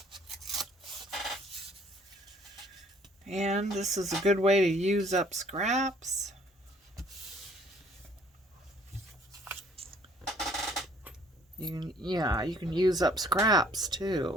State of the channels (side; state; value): both; normal; correlation 0.59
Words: and this is a good way to use up scraps. You can use up scraps